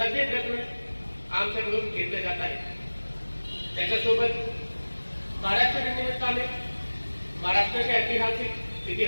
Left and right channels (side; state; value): both; inverted; correlation -1.00